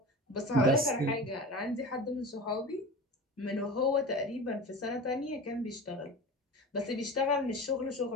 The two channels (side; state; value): both; normal; correlation 0.32